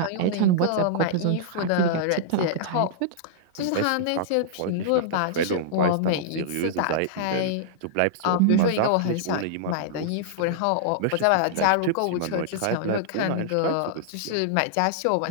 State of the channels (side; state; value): both; different; correlation -0.01